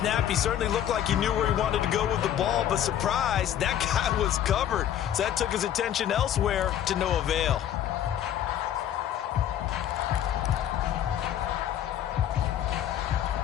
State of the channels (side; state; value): right; quieter; 10.6 dB